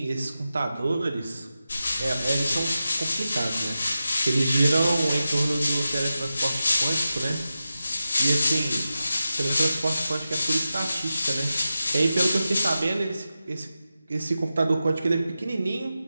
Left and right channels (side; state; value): both; inverted; correlation -0.92